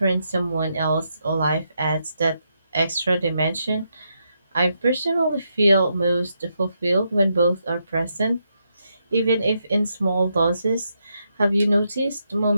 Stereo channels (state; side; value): inverted; both; correlation -0.81